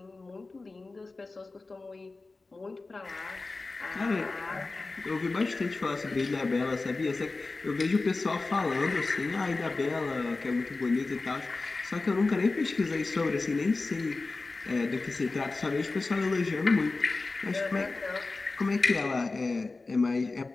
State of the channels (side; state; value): right; quieter; 3.6 dB